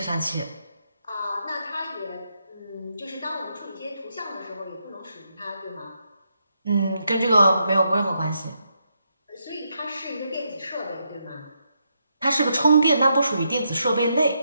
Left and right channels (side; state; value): both; inverted; correlation -0.80